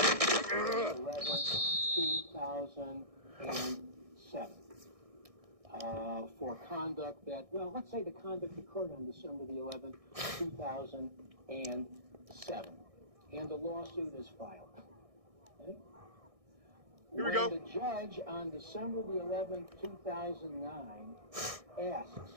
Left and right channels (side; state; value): left; late; 1.6 ms